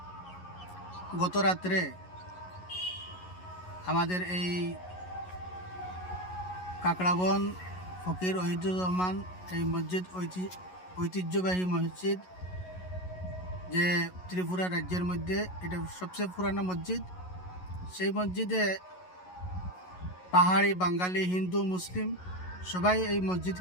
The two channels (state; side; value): late; right; 11 ms